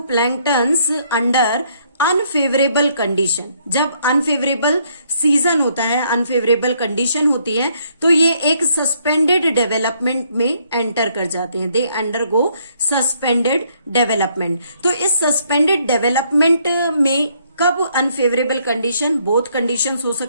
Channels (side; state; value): both; inverted; correlation -0.69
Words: प्लैंक्टन्स अंडर अनफेवरेबल कंडीशन, जब अनफेवरेबल सीजन होता है, अनफेवरेबल कंडीशन होती है, तो ये एक सस्पेंडेड डेवलपमेंट में एंटर कर जाते हैं। They undergo suspended development. तो इस सस्पेंडेड डेवलपमेंट में कब अनफेवरेबल कंडीशन, बोथ कंडीशंस हो